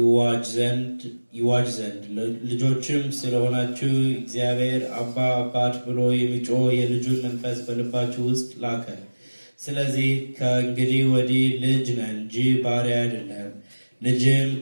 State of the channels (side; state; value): both; inverted; correlation -1.00